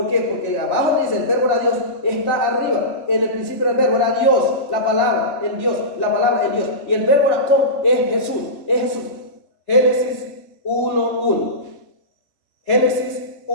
qué? Porque abajo dice el verbo era Dios, está arriba. En el principio el verbo era Dios, la palabra en Dios, la palabra en Dios. Y el verbo era con, es Jesús, es Jesús. Génesis 1:1. Génesis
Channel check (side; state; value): right; late; 3.5 ms